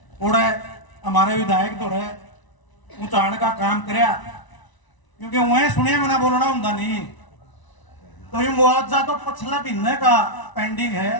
उड़े हमारे विधायक तो रहे ऊंचाण का काम कराया, क्योंकि वह सुने मैंने बोलना होंगे नहीं। तो ये मुआवजा तो पिछले महीने का पेंडिंग है।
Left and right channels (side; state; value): right; late; 1.0 ms